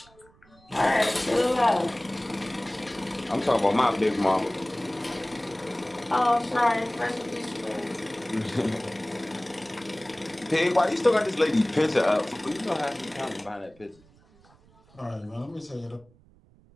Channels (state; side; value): noise; right; rumble, 29 dB below the sound